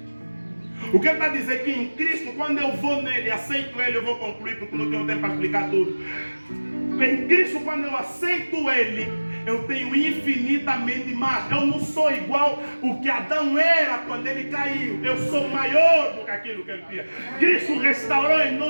O que ele está dizendo é que em Cristo, quando eu vou nele, aceito ele, eu vou concluir porque não tenho tempo para explicar tudo. Em Cristo, quando eu aceito ele, eu tenho infinitamente mais. Eu não sou igual o que Adão era quando ele caiu. Eu sou maior do que aquilo que ele tinha. Cristo restaurou em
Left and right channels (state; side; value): inverted; both; correlation -1.00